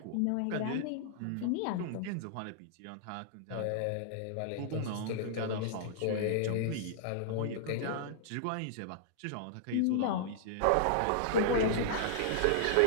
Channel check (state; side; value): different; both; correlation -0.01